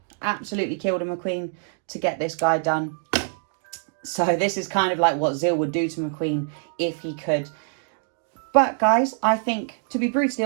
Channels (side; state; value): left; silent; digital silence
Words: Absolutely killed a McQueen to get this guy done. So this is kind of like what Zil would do to McQueen if he could. But guys, I think, to be brutally